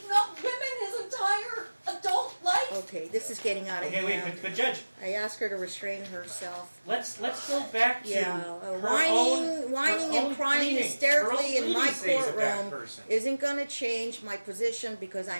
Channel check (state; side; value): inverted; both; correlation -1.00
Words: up women his entire adult life? Okay, this is getting out of Okay, wait, hand. but Judge, I asked her to restrain herself. let's go back to Yeah, her whining own and crying pleadings. hysterically Her own in my pleadings say he's a bad courtroom person. isn't gonna change my position because